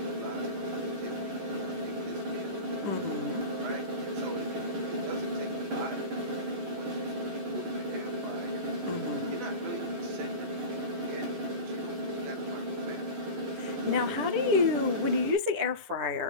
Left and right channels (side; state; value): left; late; 11 ms